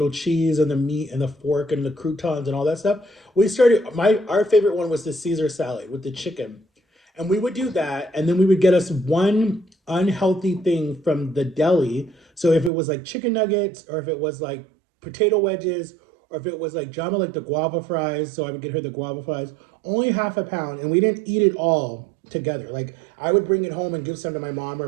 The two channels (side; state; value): left; drops out; at 12.7 s